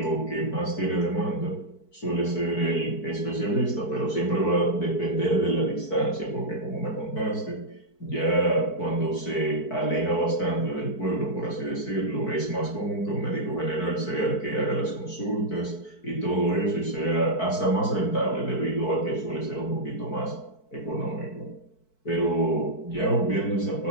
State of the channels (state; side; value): late; right; 4.6 ms